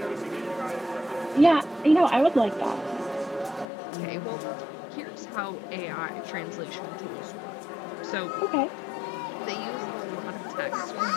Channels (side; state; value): right; drops out; at 3.7 s